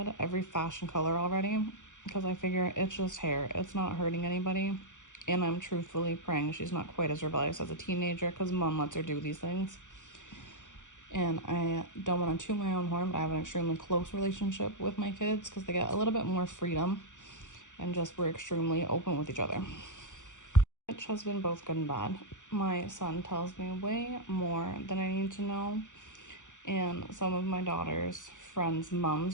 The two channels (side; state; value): right; late; 0.86 ms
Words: every fashion color already, because I figure it's just hair. It's not hurting anybody. And I'm truthfully praying she's not quite as rebellious as a teenager, because mom lets her do these things. And I don't want to toot my own horn, but I have an extremely close relationship with my kids because they get a little bit more freedom and just we're extremely open with each other. Which has been both good and bad. My son tells me way more than I need to know, and some of my daughter's friends'